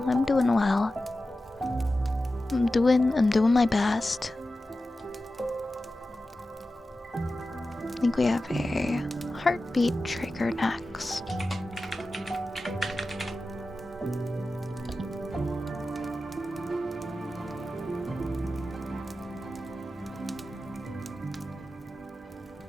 I'm doing well. I'm doing my best. I think we have a heartbeat trigger next.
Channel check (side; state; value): both; normal; correlation 0.93